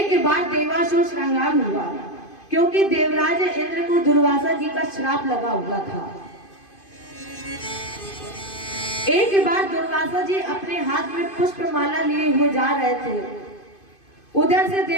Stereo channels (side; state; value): right; late; 2.5 ms